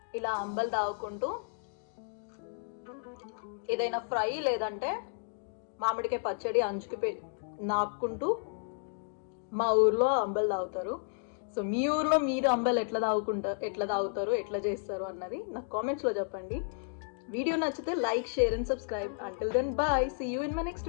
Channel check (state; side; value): silent; right; digital silence